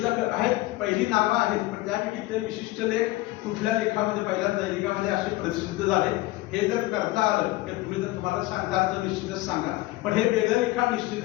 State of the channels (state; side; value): quieter; right; 18.8 dB